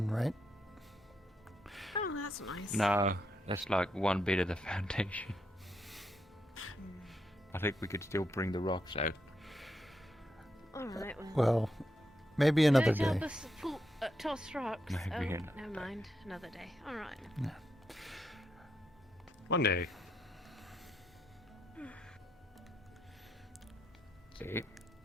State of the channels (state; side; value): normal; both; correlation 0.81